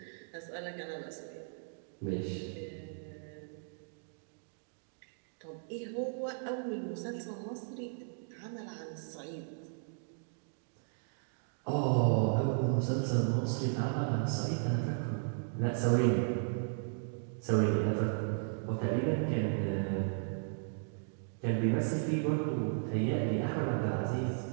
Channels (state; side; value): silent; left; digital silence